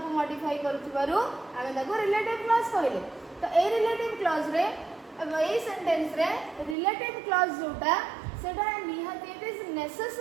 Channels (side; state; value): left; drops out; at 6.8 s